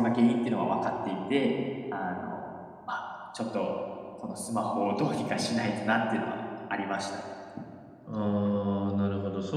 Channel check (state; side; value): identical; both; correlation 1.00